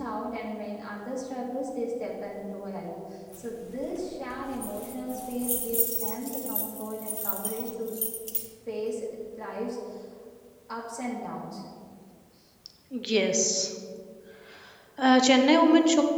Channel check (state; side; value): identical; both; correlation 1.00